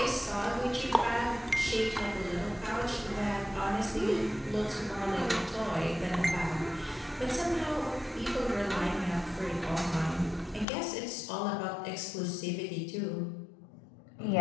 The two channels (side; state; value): right; drops out; at 10.7 s